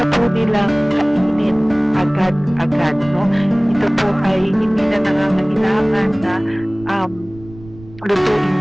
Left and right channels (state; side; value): noise; right; rumble, 20 dB below the sound